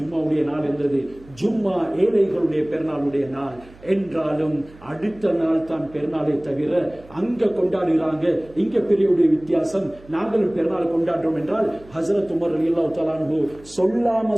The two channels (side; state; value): right; noise; hum, 23 dB below the sound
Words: நாள் இருந்தது. ஜும்மா ஏழைகளுடைய பெருநாளுடைய நாள் என்றாலும் அடுத்த நாள் தான் பெருநாளை தவிர அங்க கொண்டாடுகிறாங்க, இங்க பெரியவுடைய வித்தியாசம், நாங்களும் பெருநாள் கொண்டாடுறோம் என்றால் ஹஸரத் உமர் ரலியல்லாஹு தஆலா அன்ஹு சொல்லாம